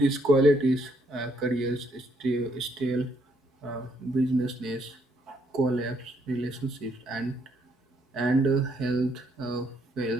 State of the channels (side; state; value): both; normal; correlation 0.71